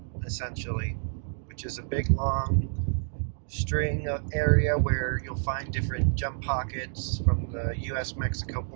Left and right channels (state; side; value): silent; left; 59 dB below the other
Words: essentially, which is a big long string of area where you'll find different gem pockets from the US-Mexico